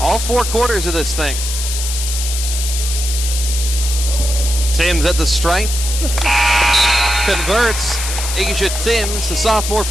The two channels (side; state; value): left; noise; hiss, 5 dB below the sound